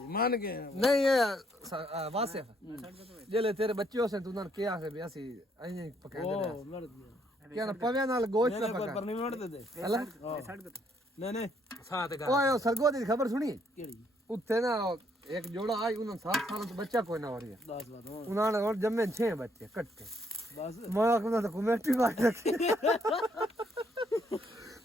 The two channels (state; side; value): normal; both; correlation 0.70